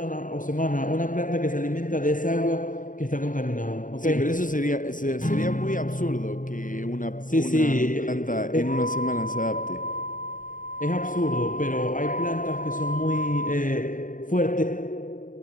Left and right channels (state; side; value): late; right; 0.39 ms